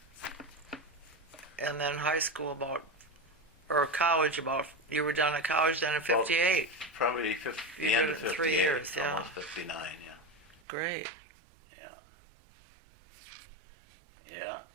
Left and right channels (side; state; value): left; drops out; at 10.6 s